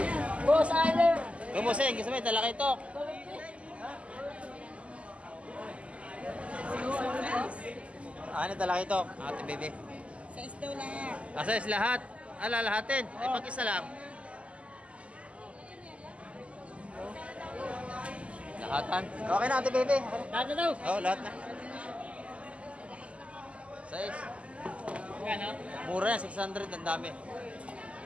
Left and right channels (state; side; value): late; left; 0.061 ms